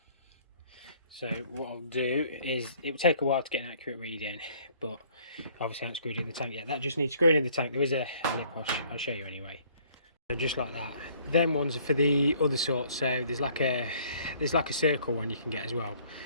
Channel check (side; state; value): both; inverted; correlation -0.59